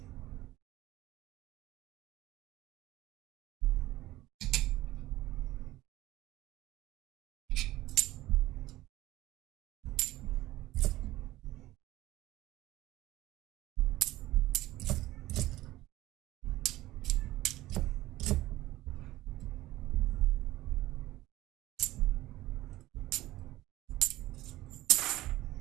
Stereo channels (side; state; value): left; quieter; 16.5 dB